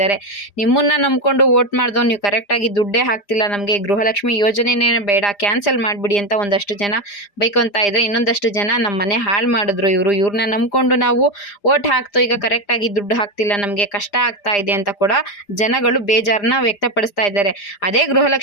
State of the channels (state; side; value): late; right; 4.9 ms